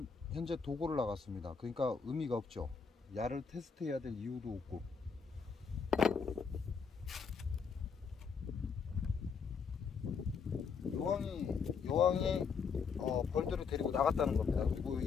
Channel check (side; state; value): right; quieter; 5.8 dB